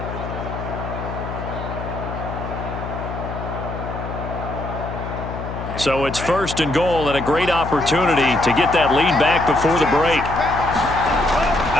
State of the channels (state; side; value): noise; left; hum, 8 dB below the sound